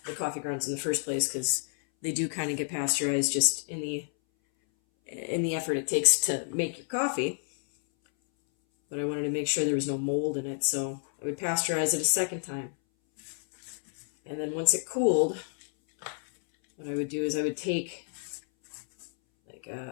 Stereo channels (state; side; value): silent; right; 58 dB below the other